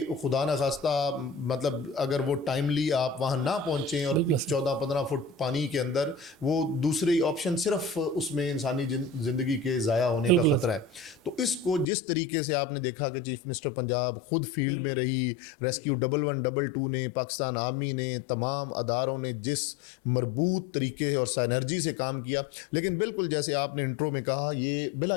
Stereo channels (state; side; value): drops out; right; at 11.9 s